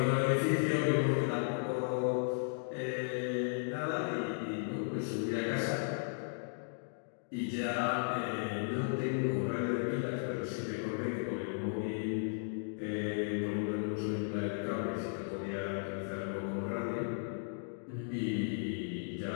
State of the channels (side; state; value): right; silent; digital silence